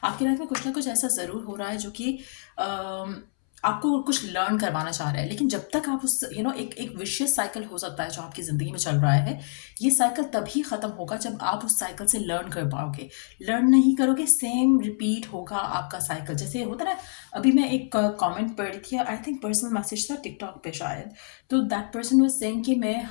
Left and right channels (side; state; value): right; silent; 61 dB below the other